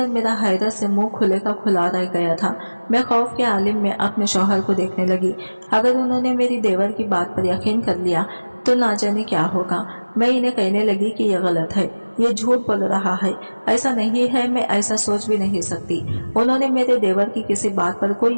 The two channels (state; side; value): inverted; both; correlation -1.00